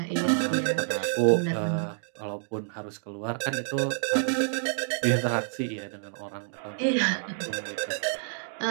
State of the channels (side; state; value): left; silent; digital silence